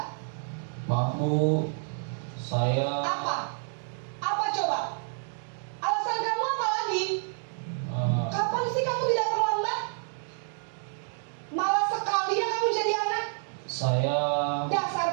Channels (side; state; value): left; silent; 59 dB below the other